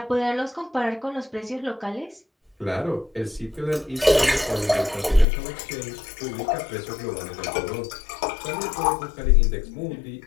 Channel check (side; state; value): right; drops out; at 5.2 s